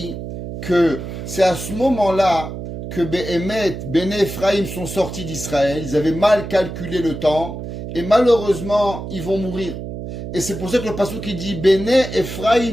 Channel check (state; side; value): noise; right; hum, 8 dB below the sound